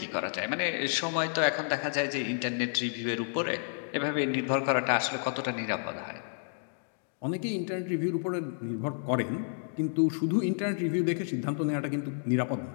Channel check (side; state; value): right; silent; digital silence